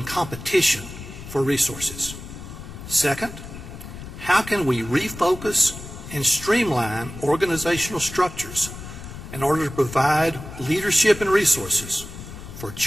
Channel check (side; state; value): left; noise; rumble, 12 dB below the sound